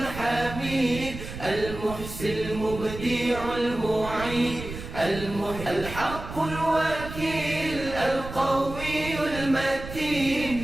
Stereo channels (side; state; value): right; noise; rumble, 10 dB below the sound